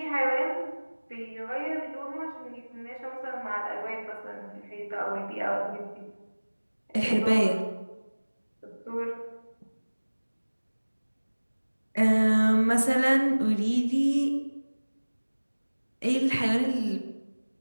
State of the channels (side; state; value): both; inverted; correlation -1.00